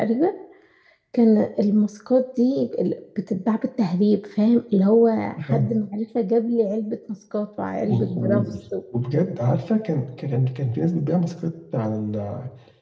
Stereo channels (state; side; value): identical; both; correlation 1.00